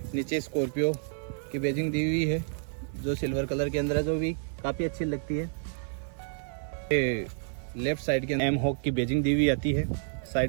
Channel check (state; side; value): silent; left; 58 dB below the other